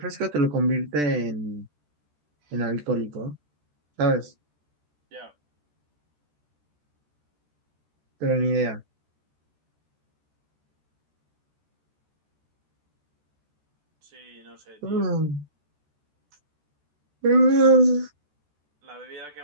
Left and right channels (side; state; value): left; late; 14 ms